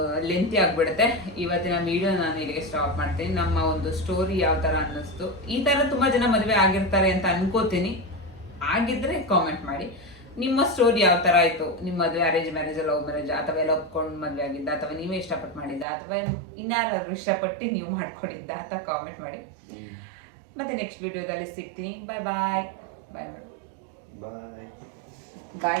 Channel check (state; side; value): drops out; left; at 15.9 s